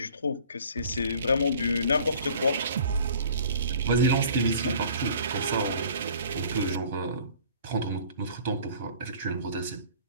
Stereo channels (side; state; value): both; inverted; correlation -0.50